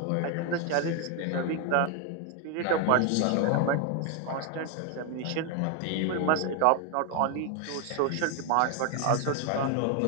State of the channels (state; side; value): different; both; correlation 0.01